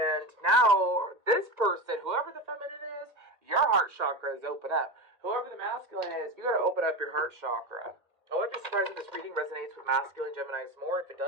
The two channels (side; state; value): left; late; 1.8 ms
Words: now this person, whoever the feminine is, your heart chakra is open up. Whoever the masculine is, you gotta open up your heart chakra. I wouldn't be surprised if this reading resonates with masculine Geminis more. If it